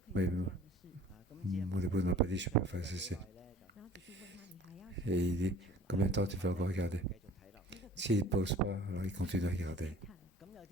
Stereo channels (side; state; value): both; normal; correlation 0.49